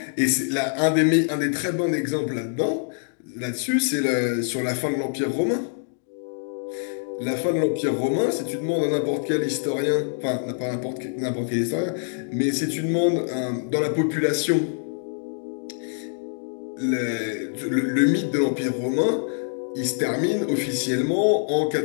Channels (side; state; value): right; silent; digital silence